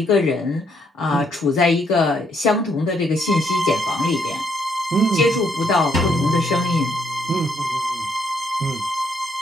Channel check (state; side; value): normal; both; correlation 0.72